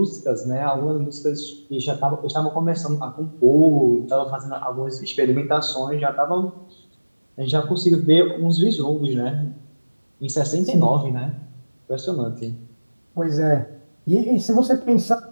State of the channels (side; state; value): both; inverted; correlation -1.00